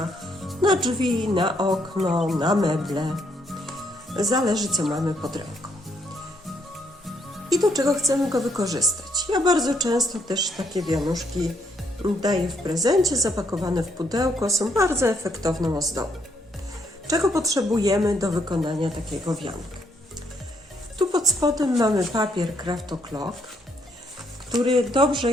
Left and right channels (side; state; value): both; normal; correlation 0.73